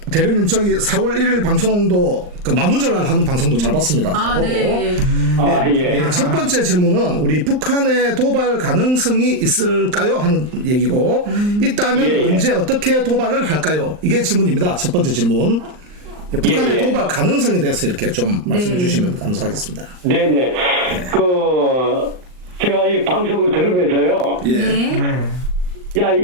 대령님 저기 4월 1일 방송도 그 만우절날 하는 방송도 잘 봤습니다. 잘 보고. 네. 예, 첫 번째 질문은 우리 북한의 도발 가능성이 있을까요? 하는 얘기고 있다면 언제 어떻게 도발을 할까요? 이게 질문입니다. 첫 번째 질문. 북한의 도발 가능성에 대해서 이렇게 좀 말씀해 주시면 감사하겠습니다. 네네. 제가 이 방송을 들으면서요. 예. 네.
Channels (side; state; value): left; late; 39 ms